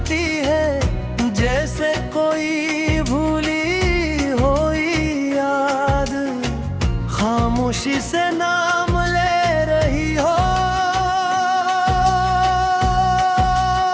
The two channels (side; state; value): both; identical; correlation 1.00